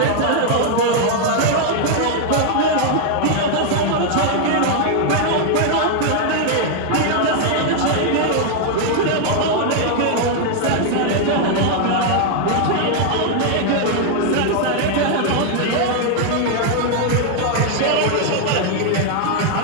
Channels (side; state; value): both; different; correlation 0.00